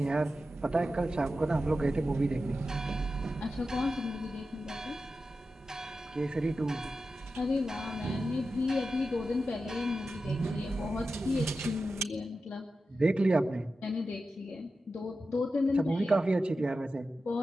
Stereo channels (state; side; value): normal; both; correlation 0.92